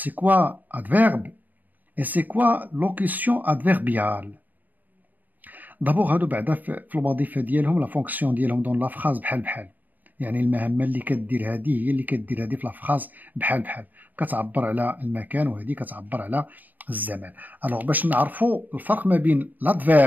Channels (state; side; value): late; left; 0.084 ms